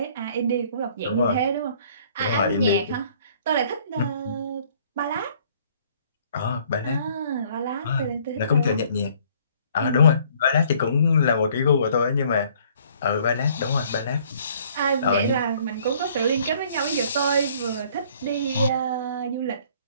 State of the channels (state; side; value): inverted; both; correlation -0.59